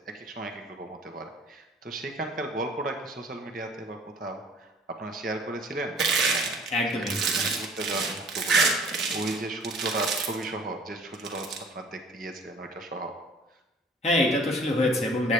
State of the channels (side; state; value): both; normal; correlation 0.51